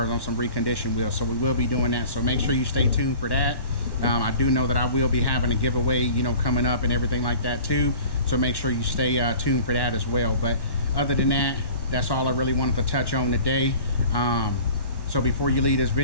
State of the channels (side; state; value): right; late; 1.1 ms